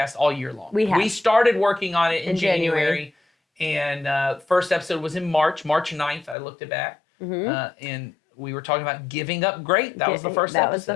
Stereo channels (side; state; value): right; drops out; at 6.4 s